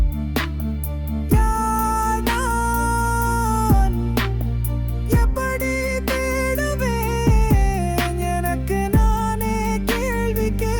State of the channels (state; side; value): identical; both; correlation 1.00